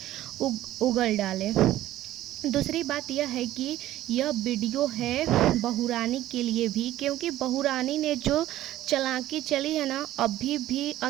उगल डालें। दूसरी बात यह है कि यह वीडियो है बहुरानी के लिए भी, क्योंकि बहुरानी ने जो चालाकी चली है ना, अभी भी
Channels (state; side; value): quieter; left; 14.2 dB